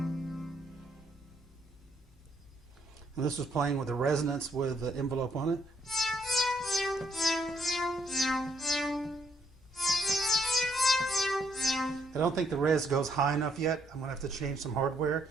And this was playing with a resonance with the envelope on it. I don't think the res goes high enough yet. I'm going to have to change some hardware.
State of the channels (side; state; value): both; normal; correlation 0.70